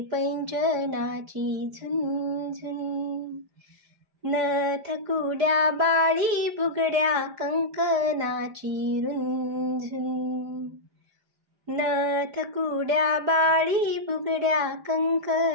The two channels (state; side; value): late; left; 4.9 ms